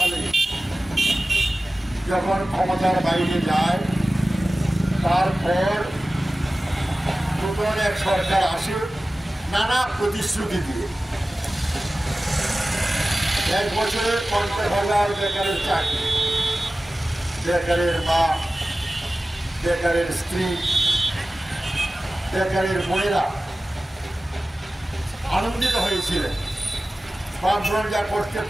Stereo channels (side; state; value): both; normal; correlation 0.96